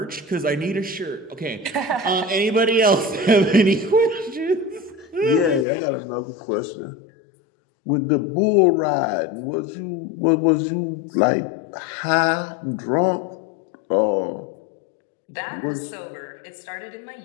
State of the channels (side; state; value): right; drops out; at 5.7 s